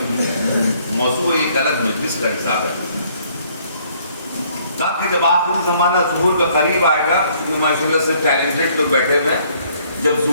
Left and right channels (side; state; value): both; inverted; correlation -0.63